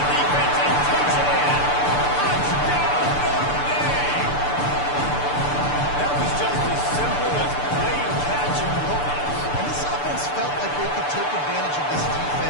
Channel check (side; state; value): right; late; 6.8 ms